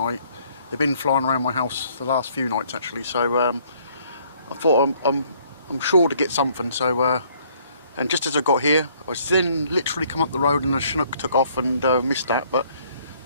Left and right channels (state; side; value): inverted; both; correlation -0.63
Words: They've been flying around my house the last few nights actually. So I thought I'm sure to get something. So and just as I got here, I was then literally come up the road and the Chinook took off and missed that. But